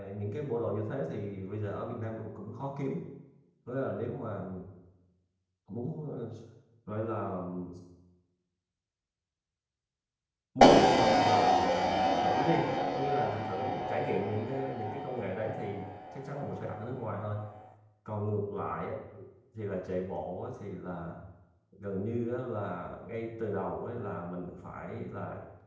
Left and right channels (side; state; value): both; identical; correlation 1.00